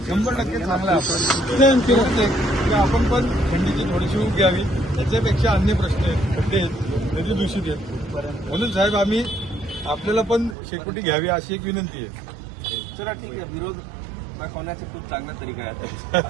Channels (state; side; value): drops out; left; at 10.6 s